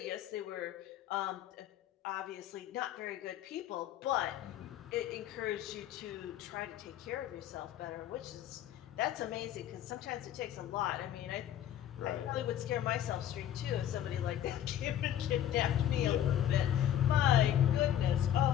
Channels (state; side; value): quieter; right; 11.0 dB